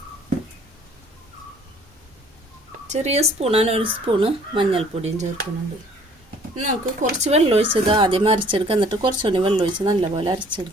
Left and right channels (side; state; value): both; normal; correlation 0.56